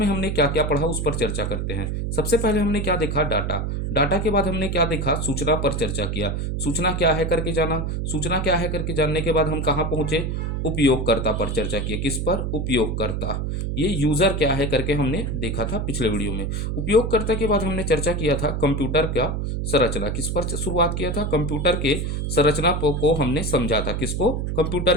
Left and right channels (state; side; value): noise; right; hum, 1 dB below the sound